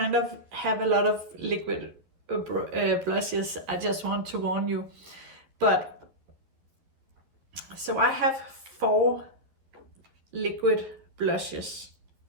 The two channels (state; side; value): late; left; 12 ms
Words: of have a lot of liquid blushes, I just want to warn you. But, so I have 4 liquid blushes.